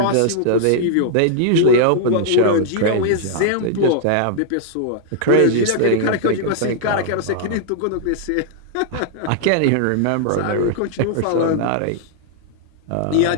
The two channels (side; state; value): both; different; correlation -0.01